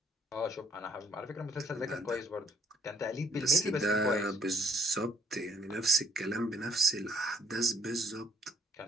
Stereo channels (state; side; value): normal; both; correlation 0.65